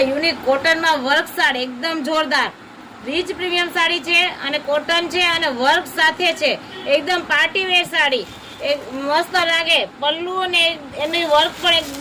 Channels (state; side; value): identical; both; correlation 1.00